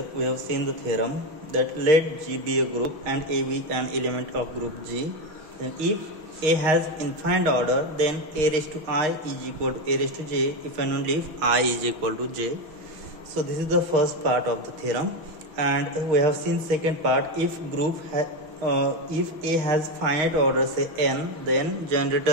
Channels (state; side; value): late; left; 6.4 ms